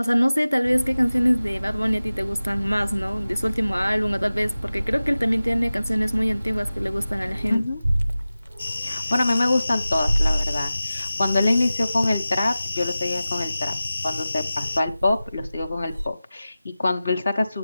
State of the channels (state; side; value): inverted; both; correlation -0.96